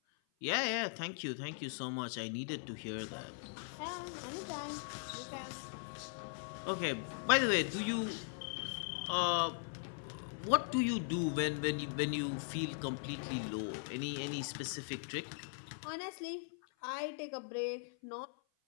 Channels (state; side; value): silent; right; 51 dB below the other